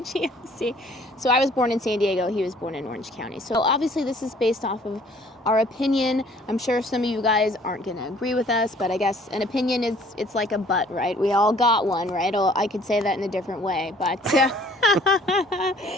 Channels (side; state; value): both; normal; correlation 0.57